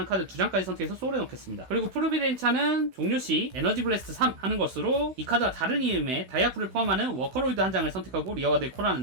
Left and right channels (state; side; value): late; left; 16 ms